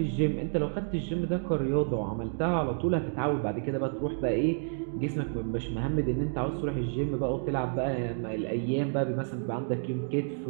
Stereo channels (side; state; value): left; silent; digital silence